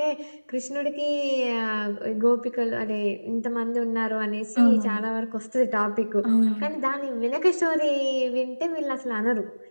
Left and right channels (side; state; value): both; inverted; correlation -1.00